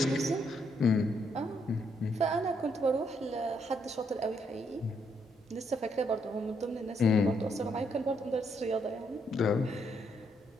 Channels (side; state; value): both; normal; correlation 0.74